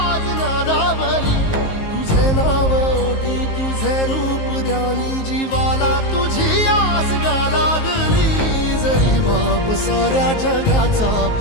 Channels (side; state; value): right; late; 19 ms